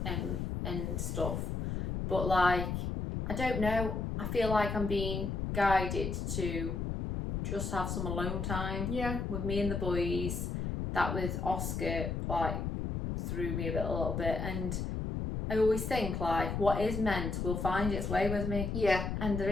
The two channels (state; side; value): noise; left; rumble, 2 dB below the sound